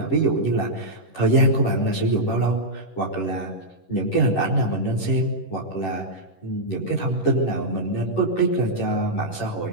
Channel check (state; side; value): late; right; 11 ms